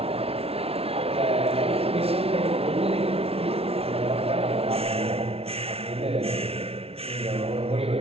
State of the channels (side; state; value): left; late; 0.29 ms